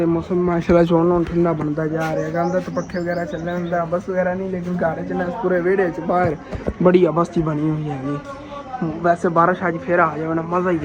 ਮੌਸਮ ਮਾਸ਼ਾਅੱਲਾ ਚੋਣ ਹੁਣ ਠੰਡਾ ਬਣਦਾ ਜਾ ਰਿਹਾ ਹੈਗਾ ਅੰਦਰ ਤਾਂ ਪੱਖੇ ਵਗੈਰਾ ਚੱਲਣ ਹੁੰਦਾ ਬਸ ਵਗੈਰਾ ਨਹੀਂ ਲੇਕਿਨ ਘਰ ਚ ਨਾ ਪੂਰੇ ਵਿਹੜੇ ਚ ਬਾਹਰ ਬੜੀ ਅਬਸਤੀ ਬਣੀ ਹੋਈ ਹੈਗੀ ਵੈਸੇ ਬਾਰਿਸ਼ ਅੱਜ ਫਿਰ ਆ ਜਾਵੇ ਨਾ ਮਜ਼ਾ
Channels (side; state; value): both; identical; correlation 1.00